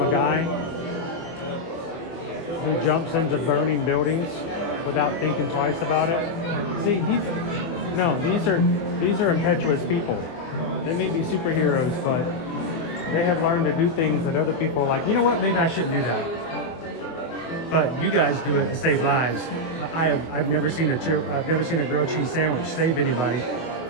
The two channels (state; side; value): late; right; 24 ms